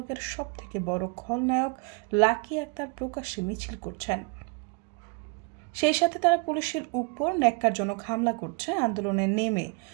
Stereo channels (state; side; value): quieter; left; 33.8 dB